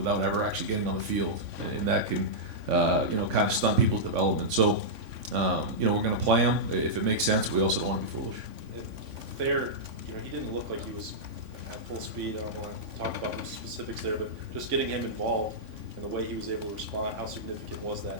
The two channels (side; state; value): left; late; 3.5 ms